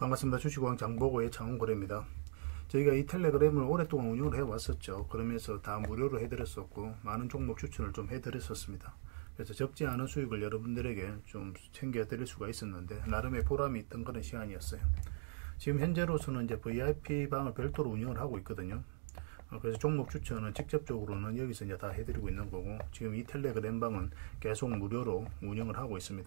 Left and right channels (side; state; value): left; silent; digital silence